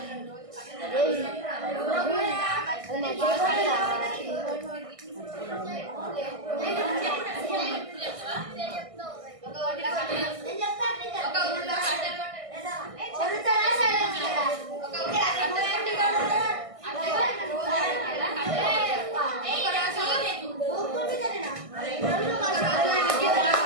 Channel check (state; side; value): late; left; 1.6 ms